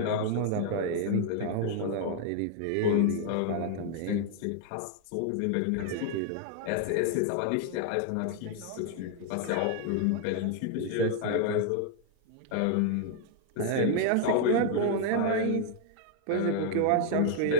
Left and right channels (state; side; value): different; both; correlation 0.00